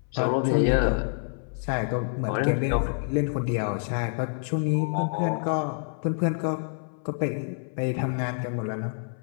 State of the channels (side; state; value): right; silent; 60 dB below the other